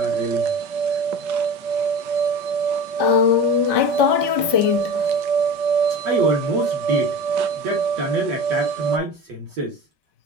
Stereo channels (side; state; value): left; late; 5.3 ms